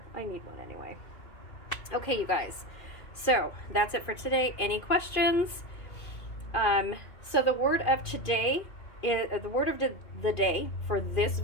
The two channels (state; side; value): late; right; 2.5 ms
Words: I need one anyway. Okay, you guys, so that's it for today. Any questions? So the word of today is, the word of the day for this